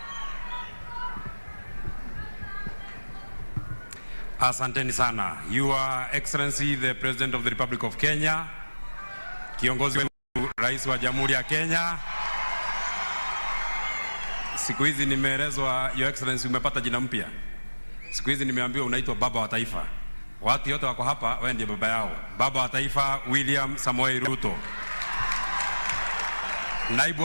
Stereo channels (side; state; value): both; inverted; correlation -1.00